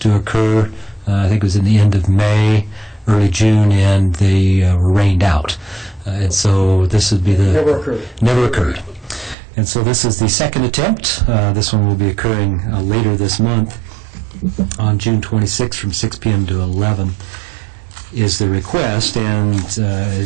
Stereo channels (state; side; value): drops out; left; at 9.3 s